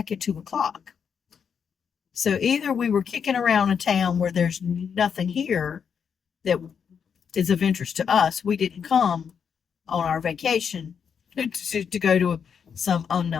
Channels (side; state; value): right; quieter; 7.0 dB